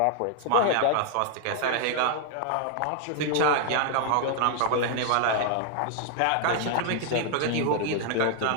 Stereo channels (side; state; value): both; different; correlation -0.01